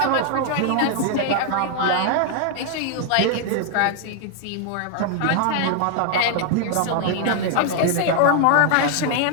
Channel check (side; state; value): both; different; correlation 0.00